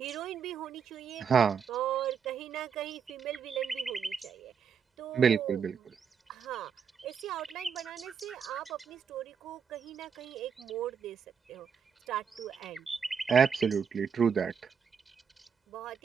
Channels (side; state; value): left; quieter; 6.8 dB